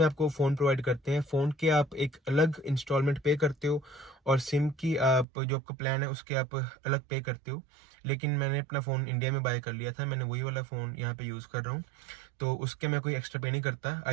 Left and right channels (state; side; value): drops out; left; at 5.2 s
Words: आपको फ़ोन प्रोवाइड करते हैं। फ़ोन के आप एक अलग इंस्टॉलमेंट पे करते हो, और सिम की आप जो आपका प्लान है उसके आप अलग पे करते हो। लेकिन मैंने अपना फ़ोन इंडिया में बाय कर लिया था, मैंने वही वाला फ़ोन यहाँ पे यूज़ कर रहा हूँ, तो उसके मैं कोई एक्स्ट्रा पे नहीं करता।